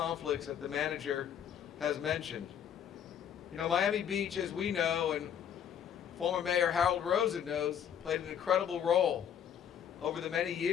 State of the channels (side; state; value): right; quieter; 8.9 dB